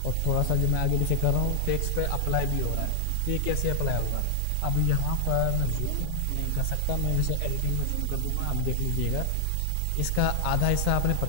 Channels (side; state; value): both; different; correlation 0.00